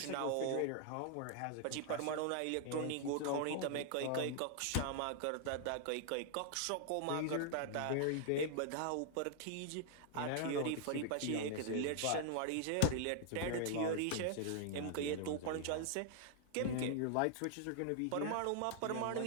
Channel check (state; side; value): different; both; correlation 0.00